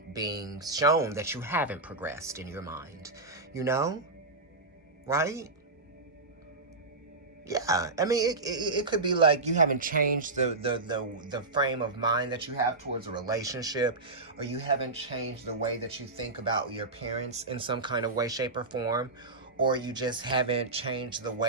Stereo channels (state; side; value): quieter; left; 3.3 dB